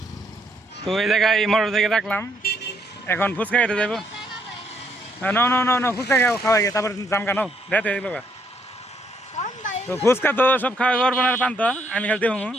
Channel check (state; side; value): normal; both; correlation 0.72